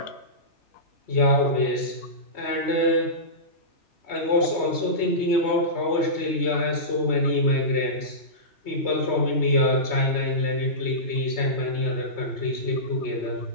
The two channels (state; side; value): late; right; 3.2 ms